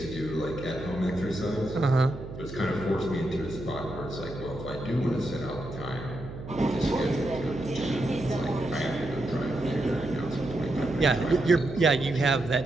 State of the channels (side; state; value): right; noise; hum, 11 dB below the sound